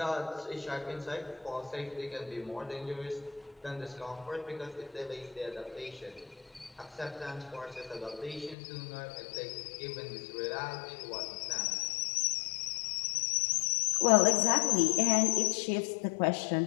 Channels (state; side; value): drops out; right; at 8.6 s